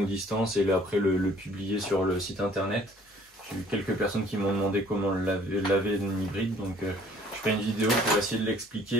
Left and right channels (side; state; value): both; normal; correlation 0.56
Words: Distance et après le publier sur le site internet. J'ai eu quelques personnes qui m'ont demandé comment laver une hybride, donc je ferai une vidéo pour essayer de